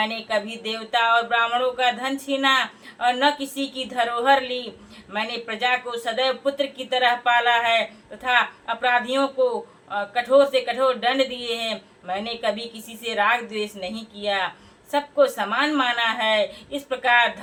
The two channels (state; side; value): identical; both; correlation 1.00